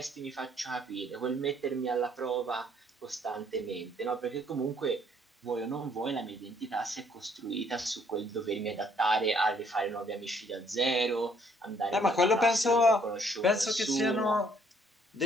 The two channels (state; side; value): normal; both; correlation 0.65